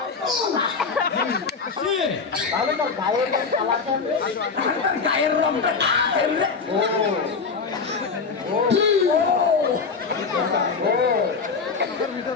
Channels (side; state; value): right; quieter; 5.0 dB